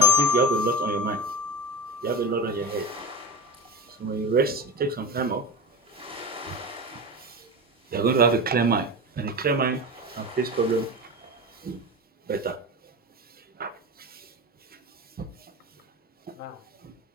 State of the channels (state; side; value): normal; both; correlation 0.26